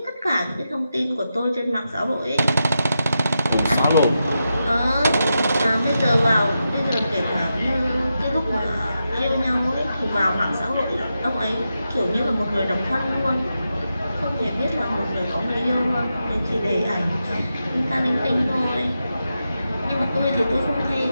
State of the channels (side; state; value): both; inverted; correlation -0.88